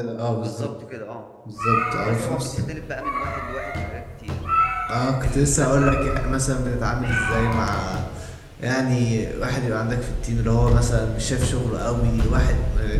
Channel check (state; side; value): identical; both; correlation 1.00